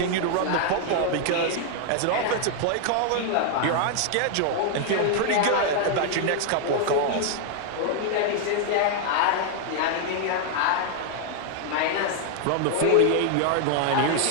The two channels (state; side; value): different; both; correlation 0.00